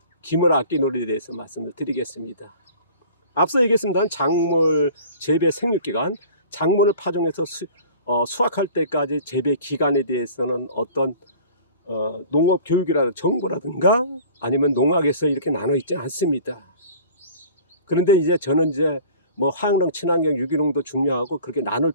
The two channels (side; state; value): both; inverted; correlation -0.45